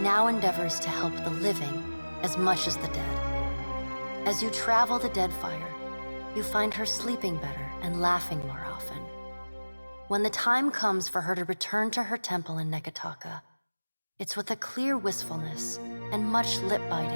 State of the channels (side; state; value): both; inverted; correlation -1.00